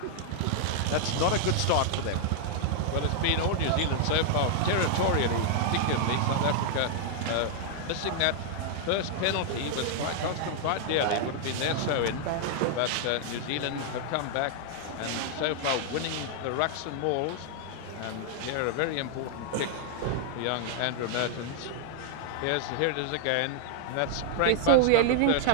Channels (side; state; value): both; different; correlation 0.00